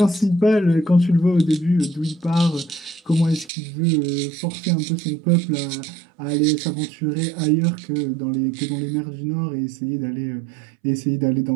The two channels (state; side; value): drops out; left; at 3.5 s